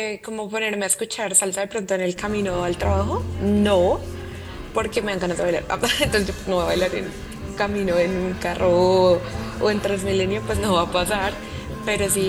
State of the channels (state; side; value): identical; both; correlation 1.00